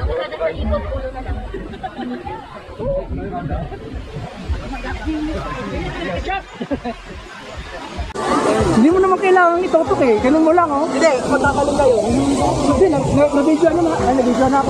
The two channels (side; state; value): both; identical; correlation 1.00